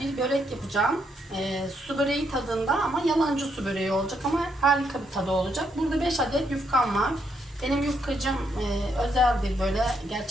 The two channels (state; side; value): normal; both; correlation 0.76